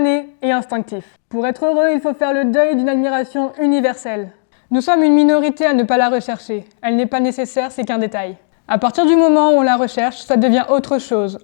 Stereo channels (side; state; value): right; silent; digital silence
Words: et instinctif. Pour être heureux, il faut faire le deuil d'une admiration universelle. Nous sommes une minorité à ne pas la rechercher. Elle n'est pas nécessaire, c'est qu'un détail. À partir du moment où on la recherche, ça devient autre chose,